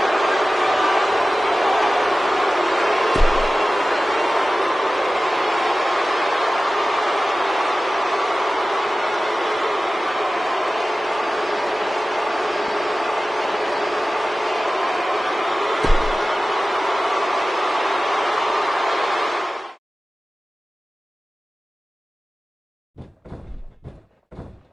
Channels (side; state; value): both; normal; correlation 0.96